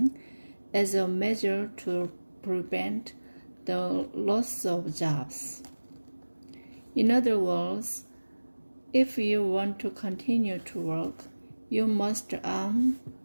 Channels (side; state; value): both; inverted; correlation -1.00